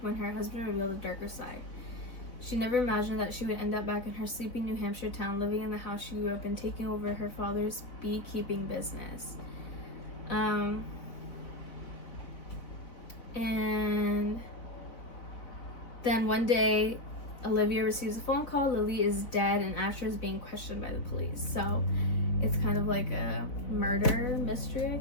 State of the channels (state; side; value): late; right; 4.0 ms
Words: when her husband revealed a darker side. She never imagined that she would end up back in her sleepy New Hampshire town, living in the house she grew up in, taking over her father's beekeeping business. And then one day Olivia receives a phone call. Lily is dead and Asher is being questioned by the police. So it's kind of like a murder mystery, I